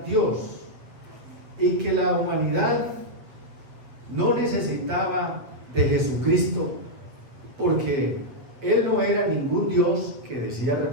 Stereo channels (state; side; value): late; left; 7.9 ms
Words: Dios y que la humanidad no necesitaba de Jesucristo, porque Él no era ningún Dios que decía